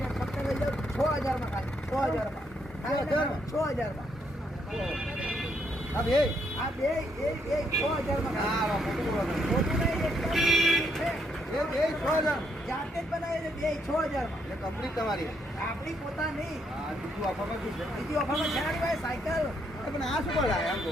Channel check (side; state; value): both; normal; correlation 0.74